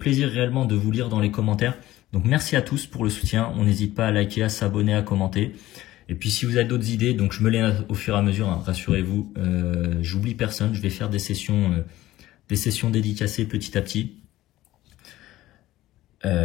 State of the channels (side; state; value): right; quieter; 15.7 dB